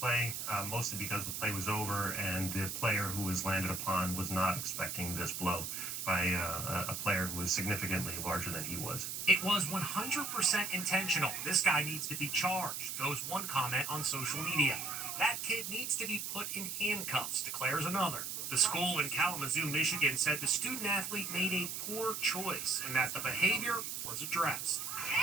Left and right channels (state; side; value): noise; right; hiss, 4 dB below the sound